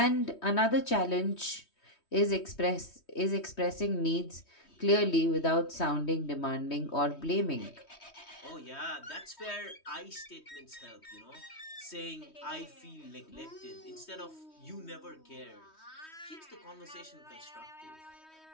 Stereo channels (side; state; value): right; late; 3.2 ms